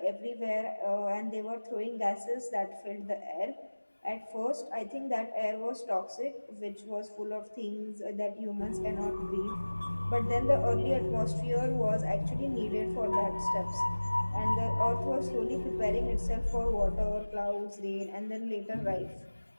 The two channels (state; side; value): inverted; both; correlation -1.00